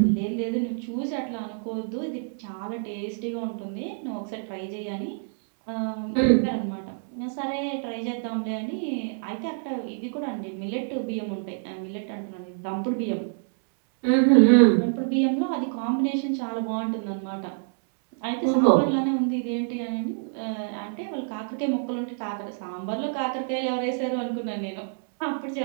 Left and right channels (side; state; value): left; silent; digital silence